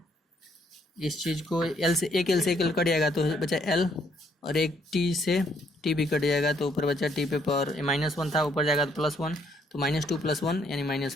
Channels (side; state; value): both; normal; correlation 0.69